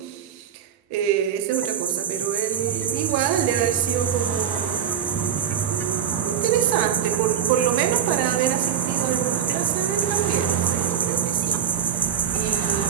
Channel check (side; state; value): left; quieter; 8.8 dB